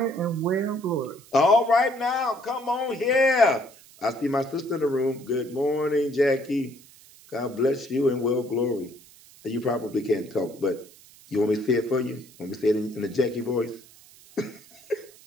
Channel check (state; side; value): noise; right; hiss, 24 dB below the sound